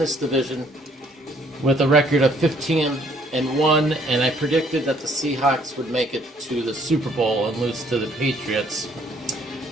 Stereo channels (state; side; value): normal; both; correlation 0.63